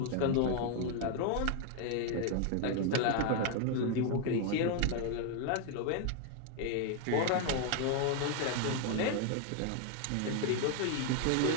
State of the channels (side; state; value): both; different; correlation 0.00